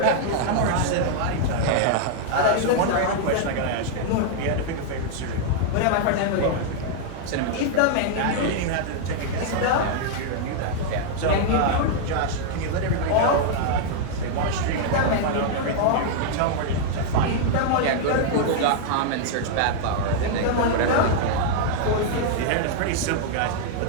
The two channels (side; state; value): both; different; correlation -0.01